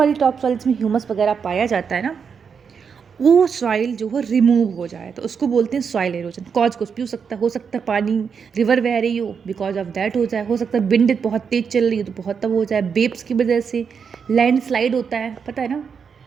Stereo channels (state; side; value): quieter; left; 6.4 dB